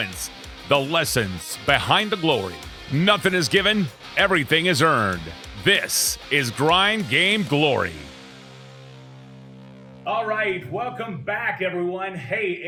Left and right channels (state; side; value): identical; both; correlation 1.00